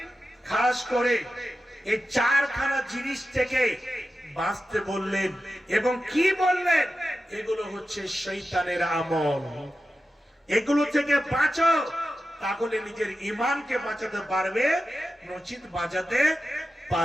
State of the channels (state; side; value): normal; both; correlation 0.92